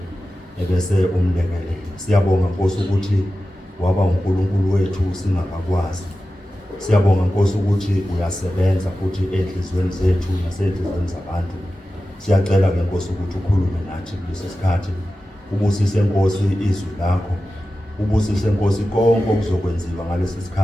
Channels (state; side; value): normal; both; correlation 0.94